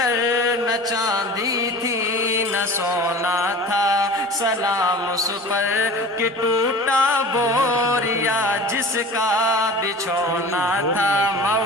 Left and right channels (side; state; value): both; normal; correlation 0.39